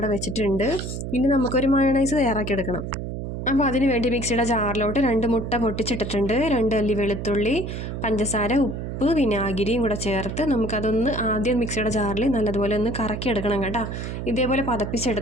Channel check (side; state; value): right; noise; hum, 5 dB below the sound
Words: വെച്ചിട്ടുണ്ട്. ഇനി നമുക്കൊരു മയോണൈസ് തയ്യാറാക്കിയെടുക്കണം. അപ്പോൾ അതിന് വേണ്ടി മിക്സിയുടെ ജാറിലോട്ട് 2 മുട്ട പൊട്ടിച്ചിട്ടിട്ടുണ്ട്, 2 അല്ലി വെളുത്തുള്ളി, പഞ്ചസാര, ഉപ്പ്, വിനാഗിരിയും കൂടെ ചേർത്ത് നമുക്കതൊന്ന് ആദ്യം മിക്സിയുടെ ജാറിൽ നല്ലതുപോലെ ഒന്ന് കറക്കിയെടുക്കണം കേട്ടോ. ഇതേപോലെ